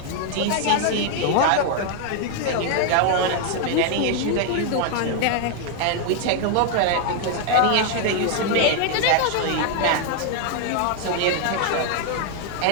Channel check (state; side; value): different; both; correlation 0.00